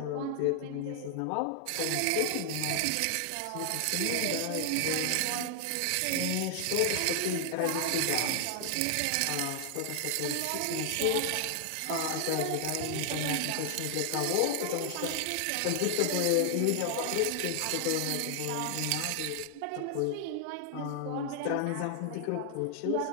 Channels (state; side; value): different; both; correlation 0.00